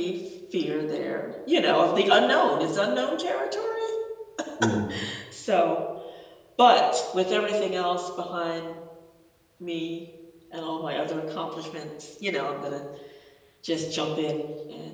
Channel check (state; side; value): identical; both; correlation 1.00